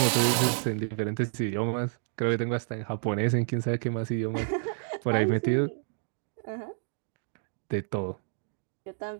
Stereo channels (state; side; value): silent; left; digital silence